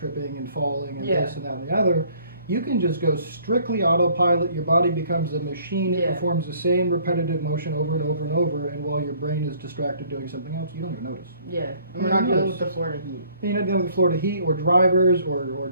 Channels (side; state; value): both; inverted; correlation -0.59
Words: and falling and this and that and the other, you can just go strictly autopilot. Your body becomes a machine. It performs the same repetitive motion over and over and over, and while your brain is distracted doing something else, you don't even notice. Yeah, and we're not dealing with the Florida heat. You're not dealing with the Florida heat, or drivers, or